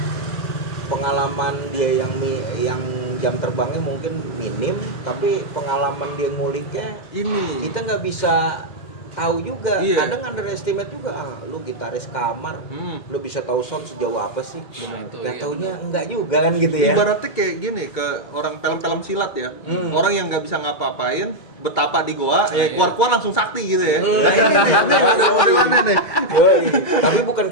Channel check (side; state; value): right; late; 2.2 ms